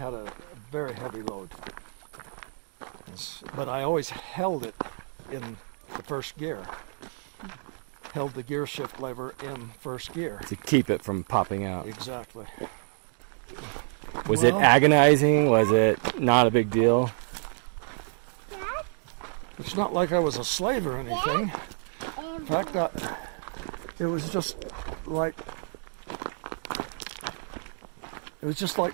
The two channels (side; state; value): left; silent; 56 dB below the other